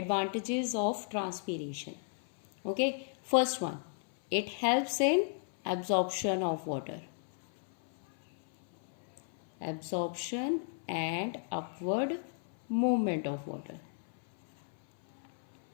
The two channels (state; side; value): silent; right; 55 dB below the other